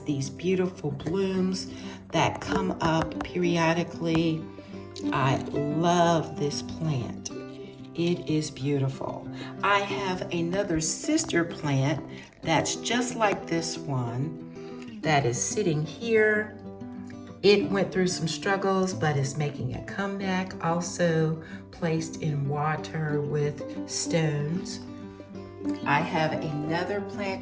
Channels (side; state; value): both; identical; correlation 1.00